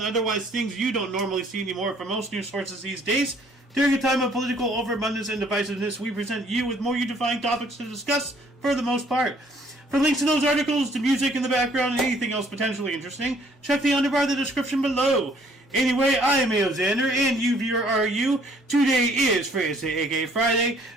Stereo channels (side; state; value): both; normal; correlation 0.61